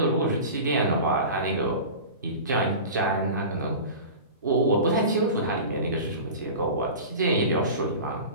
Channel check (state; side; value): inverted; both; correlation -0.34